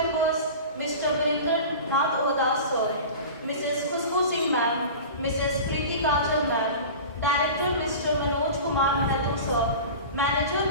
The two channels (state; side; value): inverted; both; correlation -0.34